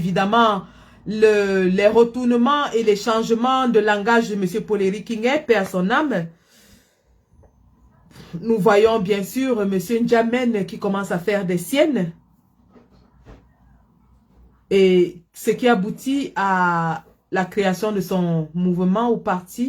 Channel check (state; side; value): identical; both; correlation 1.00